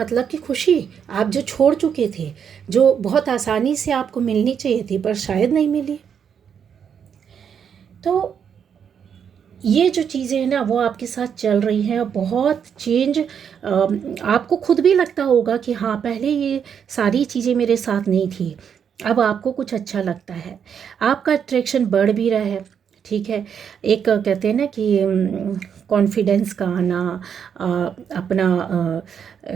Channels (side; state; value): left; quieter; 7.7 dB